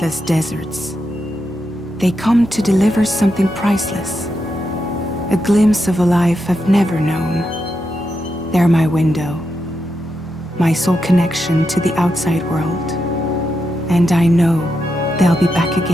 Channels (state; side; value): normal; both; correlation 0.85